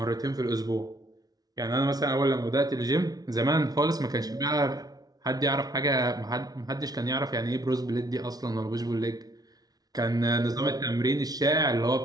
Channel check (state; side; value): late; left; 0.19 ms